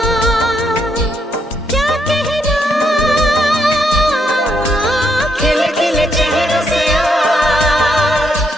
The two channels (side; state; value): both; normal; correlation 0.76